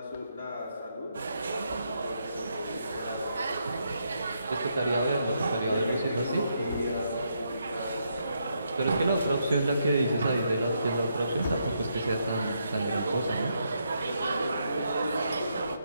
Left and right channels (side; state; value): both; inverted; correlation -0.78